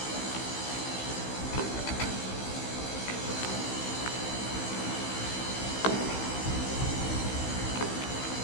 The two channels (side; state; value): right; late; 15 ms